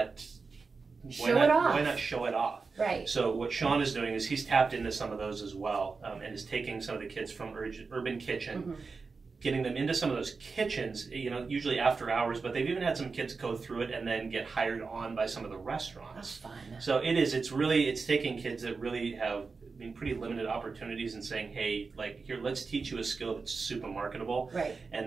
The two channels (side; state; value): left; quieter; 4.5 dB